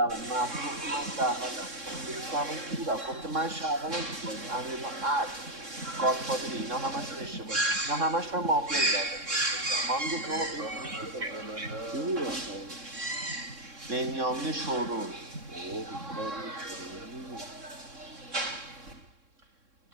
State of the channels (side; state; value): left; late; 3.6 ms